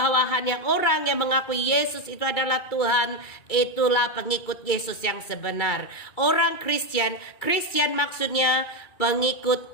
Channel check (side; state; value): right; late; 2.3 ms